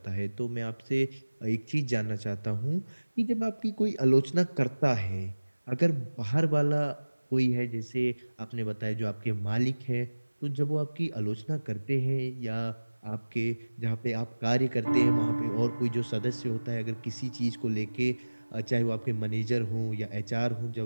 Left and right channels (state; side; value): inverted; both; correlation -1.00